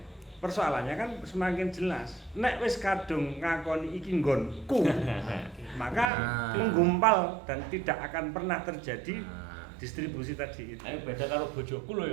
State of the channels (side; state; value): left; drops out; at 6.1 s